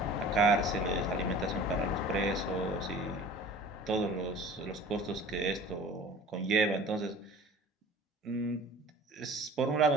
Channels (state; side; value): normal; both; correlation 0.43